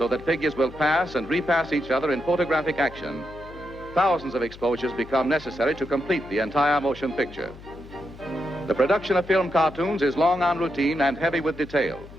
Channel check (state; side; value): noise; left; hum, 18 dB below the sound